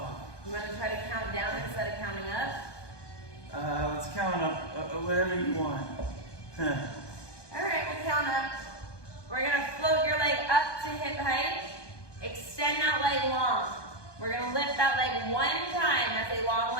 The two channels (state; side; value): late; right; 1.2 ms